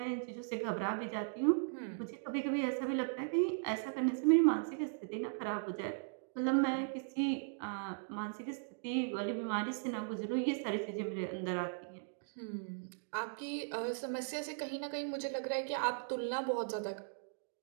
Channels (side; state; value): left; silent; digital silence